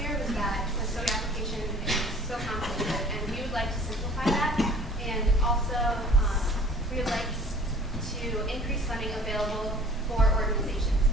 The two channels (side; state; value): both; normal; correlation 0.49